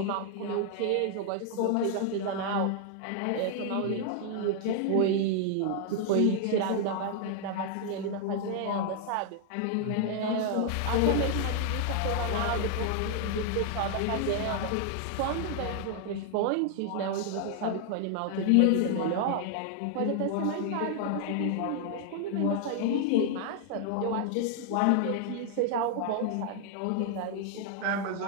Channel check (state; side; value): different; both; correlation 0.00